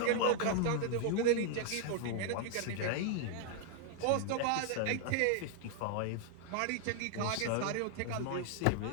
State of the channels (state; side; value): different; both; correlation 0.00